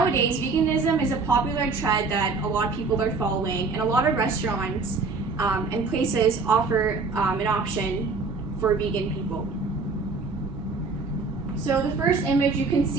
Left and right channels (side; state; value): left; quieter; 4.2 dB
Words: veganism is a popular trend that a lot of people are following, and a lot of restaurants and places offer an option for vegan people. So the first image, you can